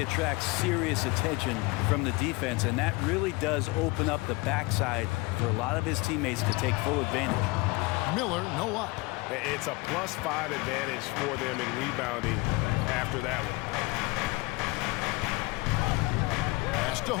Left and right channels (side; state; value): right; quieter; 24.3 dB